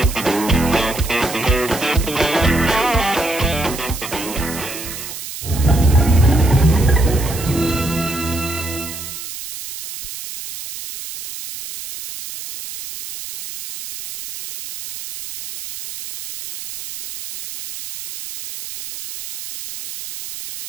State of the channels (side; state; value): right; noise; hiss, 10 dB below the sound